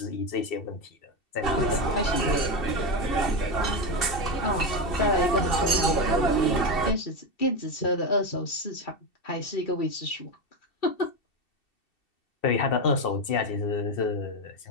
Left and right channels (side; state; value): right; late; 2.7 ms